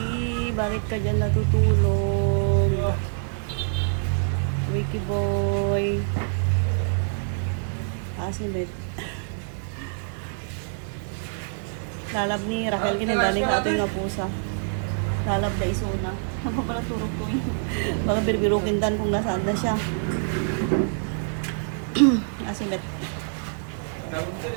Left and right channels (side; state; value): left; silent; digital silence